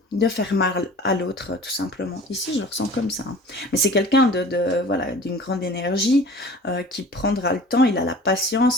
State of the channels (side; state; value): both; normal; correlation 0.43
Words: de faire mal à l'autre, tout simplement. Ici, je le ressens comme ça, hein. Mais c'est quelqu'un voilà, d'une grande énergie, qui prendra le temps, il a la